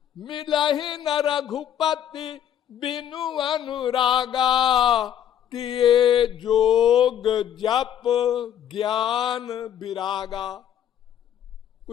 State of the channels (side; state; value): right; quieter; 10.1 dB